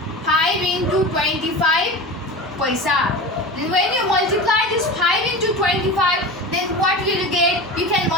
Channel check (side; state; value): both; normal; correlation 0.30